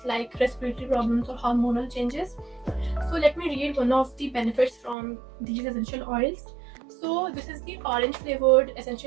like respiratory problems or hormonal changes. So let me read one of the benefits from these essential oils. So this is the orange flavored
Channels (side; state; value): left; drops out; at 5.0 s